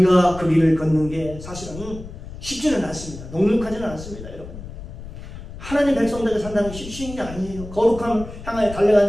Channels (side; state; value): left; noise; rumble, 12 dB below the sound